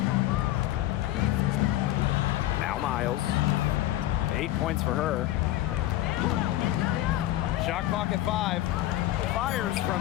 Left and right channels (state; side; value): quieter; right; 14.8 dB